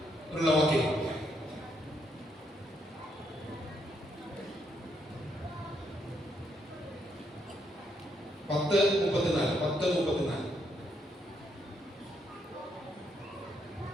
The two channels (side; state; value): both; normal; correlation 0.76